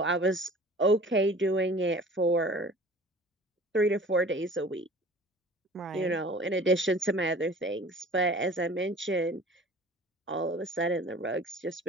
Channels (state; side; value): normal; both; correlation 0.45